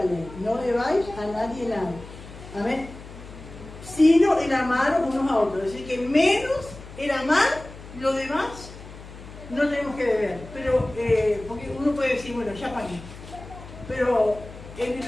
ley. No debáis a nadie nada. Amén. Sino el amaros unos a otros. Es decir, que menos el amar, lo demás no tenemos que deber. Pero, porque uno puede decir, bueno, ya pagué. Pero en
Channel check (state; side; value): noise; left; hum, 16 dB below the sound